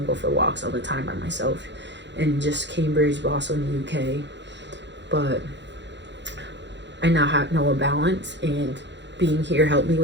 go for walks all the time by myself, and just Cambridge, but also in the UK. But I now know a balance, and being here helped me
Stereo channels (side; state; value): left; late; 0.52 ms